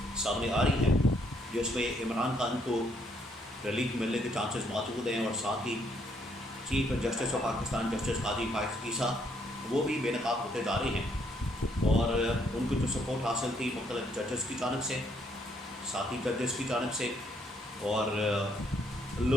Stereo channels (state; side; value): normal; both; correlation 0.70